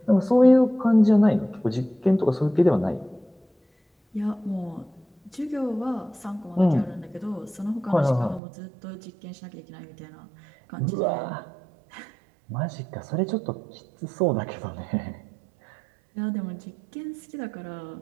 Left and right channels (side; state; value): left; drops out; at 8.4 s